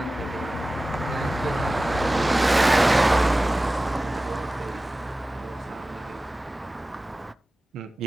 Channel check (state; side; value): normal; both; correlation 0.96